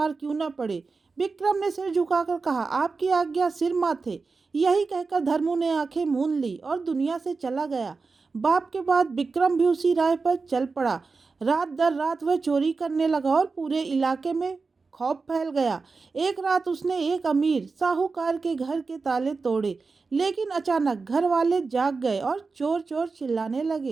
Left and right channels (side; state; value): left; quieter; 4.3 dB